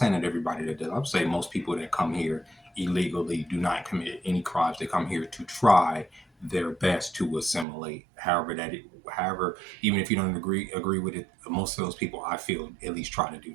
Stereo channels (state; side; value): drops out; left; at 7.7 s